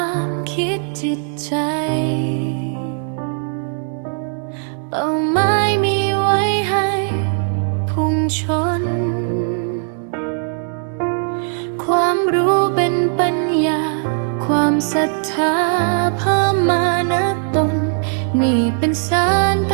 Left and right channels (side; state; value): left; silent; 57 dB below the other